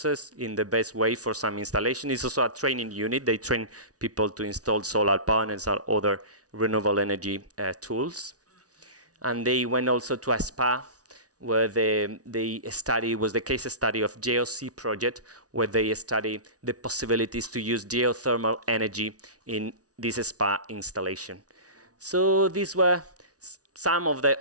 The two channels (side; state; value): left; late; 0.68 ms